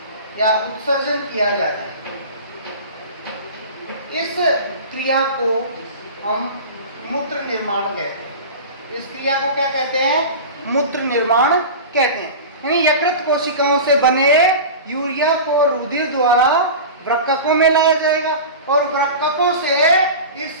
या उत्सर्जन किया जाता है। इस क्रिया को हम मूत्र निर्माण कहते हैं। इस क्रिया को क्या कहते हैं? मूत्र निर्माण कहते हैं। यानी यकृत कोशिकाओं से बने यूरिया को रुधिर द्वारा वृक्कों में लाया जाएगा और वृक्कों से इस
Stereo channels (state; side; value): inverted; both; correlation -0.31